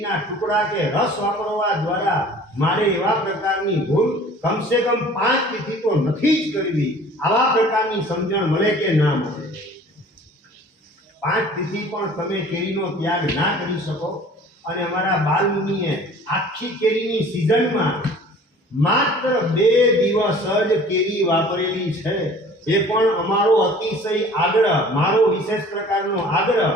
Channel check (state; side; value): normal; both; correlation 0.48